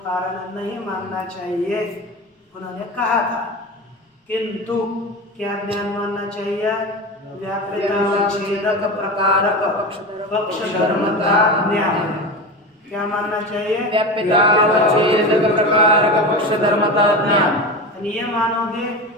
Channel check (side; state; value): both; normal; correlation 0.25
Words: कारण नहीं मानना चाहिए, उन्होंने कहा था। किंतु क्या ज्ञान मानना चाहिए? व्याप्यतावच्छेदक प्रकारक पक्ष धर्मता ज्ञान। क्या मानना चाहिए? व्याप्यतावच्छेदक प्रकारक पक्ष धर्मता ज्ञान। ये मानोगे